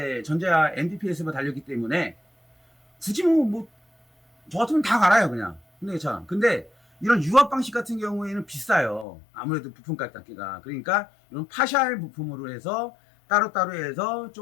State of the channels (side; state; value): right; drops out; at 9.1 s